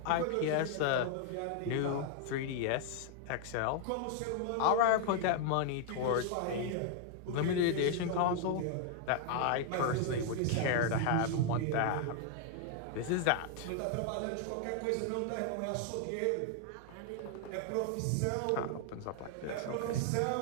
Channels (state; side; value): different; both; correlation 0.00